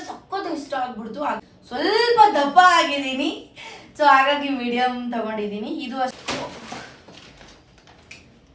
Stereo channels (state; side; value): identical; both; correlation 1.00